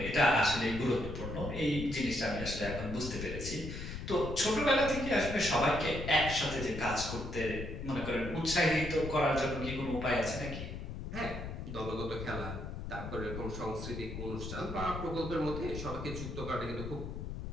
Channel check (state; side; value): noise; left; rumble, 7 dB below the sound